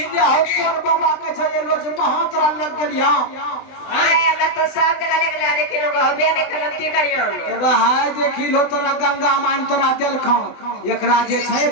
इंडिया हो तोर बाबा के छै रोज महातरा लग गेलिया हमरा तो सब जगह ले गेला लेकिन लोग होबे नहीं करती करियो ए भाई देखी लो तोरा गंगा मान तोरा देल खा एकरा जे छै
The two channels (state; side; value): late; right; 20 ms